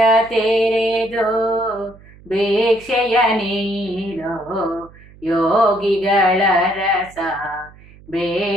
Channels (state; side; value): noise; right; hum, 23 dB below the sound